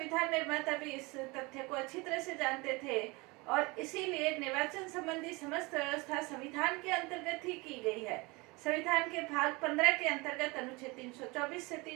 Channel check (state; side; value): quieter; left; 25.4 dB